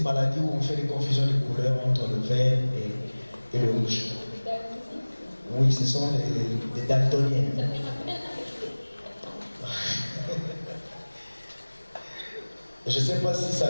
maladie où on fait des confusions de couleurs entre le vert et le rouge. Le daltonisme? Oui, ce sont des daltoniens. Ça me rappelle Je ne sais pas si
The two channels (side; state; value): both; inverted; correlation -1.00